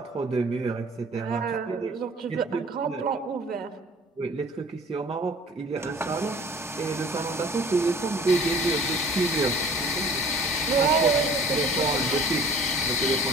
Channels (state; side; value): normal; both; correlation 0.49